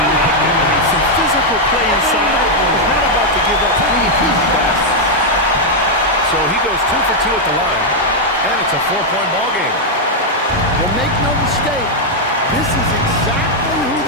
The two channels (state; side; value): normal; both; correlation -0.01